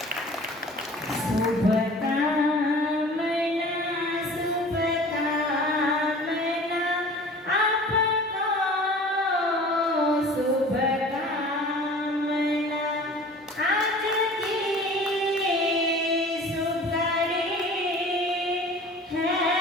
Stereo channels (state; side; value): normal; both; correlation 0.43